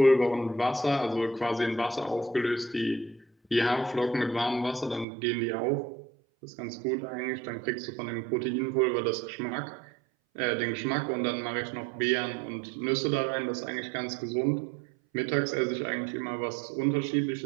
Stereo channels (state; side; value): drops out; left; at 5.1 s